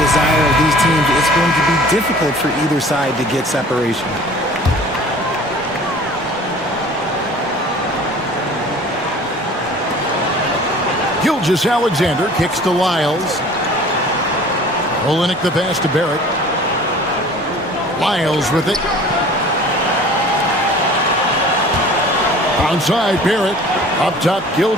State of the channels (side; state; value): both; normal; correlation 0.46